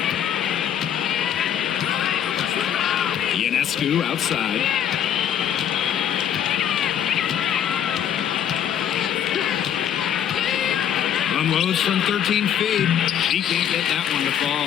Ionescu outside. Unloads from 13 feet. He can't get that one to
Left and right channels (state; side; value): quieter; right; 9.5 dB